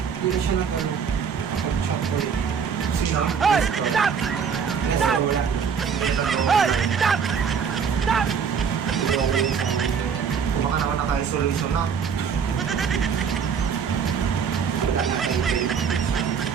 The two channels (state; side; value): quieter; left; 6.8 dB